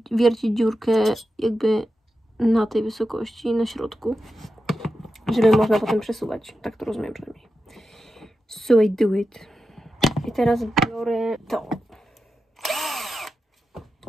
wiercić dziurkę jakby na tej wysokości, na środku, żeby można potem przesuwać. Tak to rozumiem przynajmniej. So I do it. I teraz biorę to.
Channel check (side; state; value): both; normal; correlation 0.90